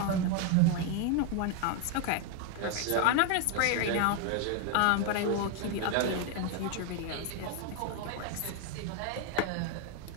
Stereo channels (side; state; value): both; different; correlation 0.01